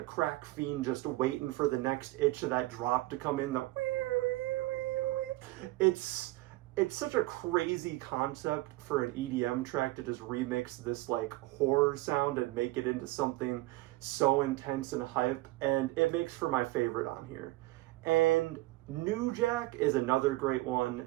crack fiend just waiting for the next itch of that drop to come in. It's such a crazy concept for an EDM track to just remix this like horror sound and make it into something so intense and hype, and it makes for my favorite on here. And New Jack is another great one,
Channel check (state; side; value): quieter; left; 19.4 dB